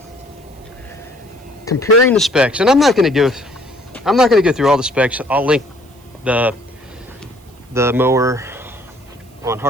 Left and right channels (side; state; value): right; noise; hiss, 30 dB below the sound